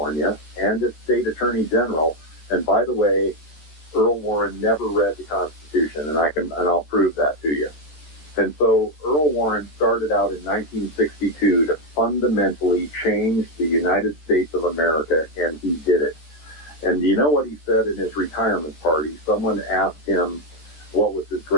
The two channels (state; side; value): late; right; 13 ms